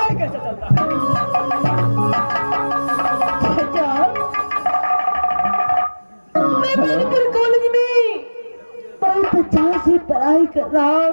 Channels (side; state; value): both; inverted; correlation -1.00